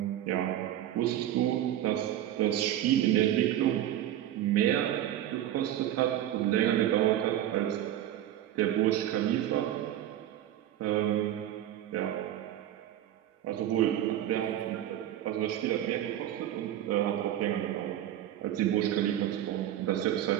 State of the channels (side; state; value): left; quieter; 12.1 dB